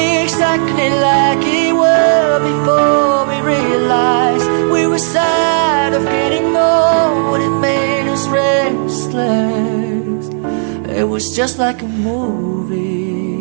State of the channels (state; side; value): silent; left; digital silence